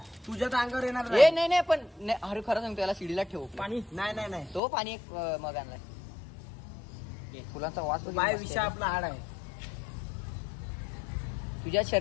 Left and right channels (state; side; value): drops out; right; at 4.6 s